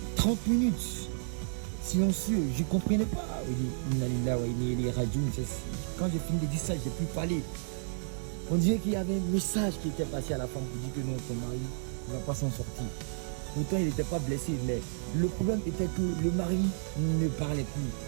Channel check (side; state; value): left; silent; 57 dB below the other